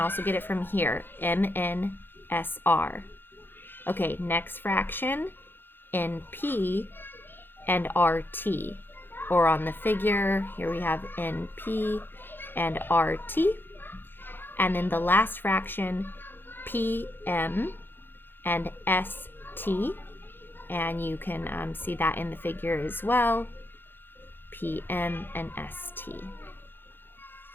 get it from here, MNSR. Okay, next fraction, NP and RT. Or on the figure, here we have NP and RT. And then the last fraction, PM and ST. And you can see that in the figure as well, PM and ST.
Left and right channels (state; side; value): late; right; 0.099 ms